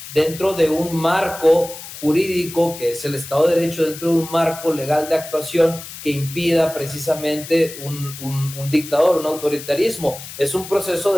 dentro de un marco jurídico que es el Estado de Derecho, dentro de un marco legal de actuación que impida precisamente un dictador, un autoritarismo. Es un proceso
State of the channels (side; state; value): left; noise; hiss, 13 dB below the sound